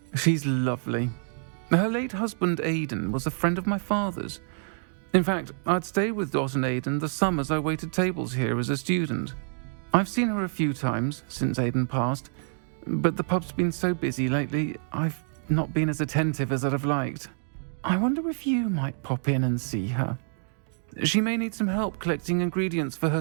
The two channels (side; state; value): left; silent; 60 dB below the other